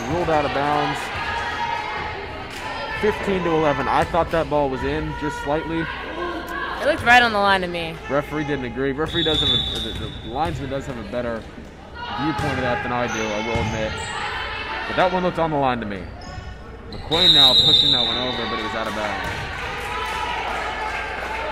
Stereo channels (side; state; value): both; identical; correlation 1.00